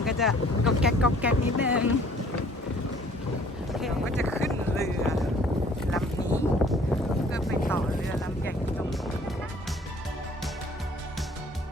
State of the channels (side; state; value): both; normal; correlation 0.55